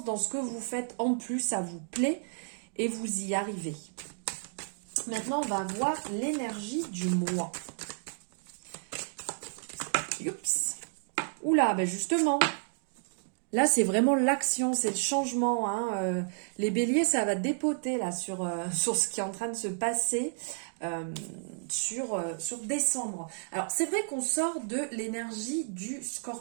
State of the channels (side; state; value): left; silent; digital silence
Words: dans ce que vous faites. En plus, ça vous plaît et vous y arrivez. Maintenant, on va voir l'énergie du mois. Oups. Oula, ben justement, là, c'est vraiment l'action, c'est le changement. Les béliers, ça va dépoter là sur ce qui est en train de se passer sur décembre. Alors, c'est vrai qu'on sort de l'énergie du